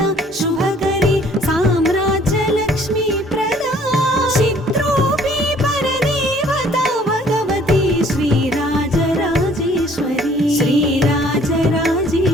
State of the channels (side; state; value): both; normal; correlation 0.58